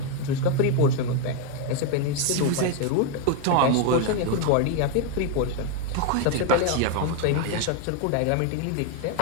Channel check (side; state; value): both; different; correlation 0.01